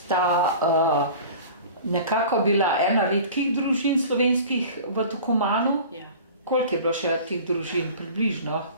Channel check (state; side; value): inverted; both; correlation -0.40